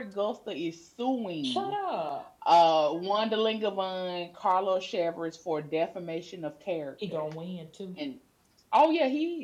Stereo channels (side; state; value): both; identical; correlation 1.00